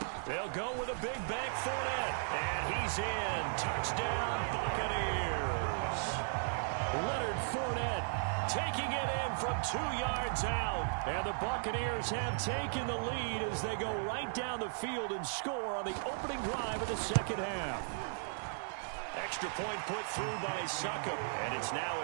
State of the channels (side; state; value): left; silent; digital silence